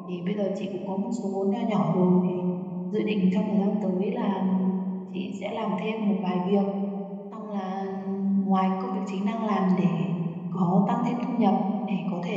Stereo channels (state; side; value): identical; both; correlation 1.00